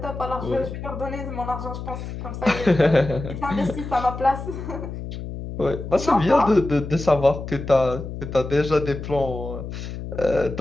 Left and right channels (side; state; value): left; noise; hum, 8 dB below the sound